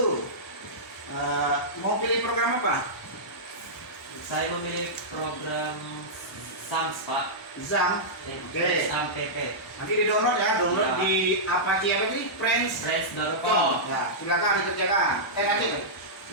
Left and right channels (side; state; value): both; normal; correlation -0.13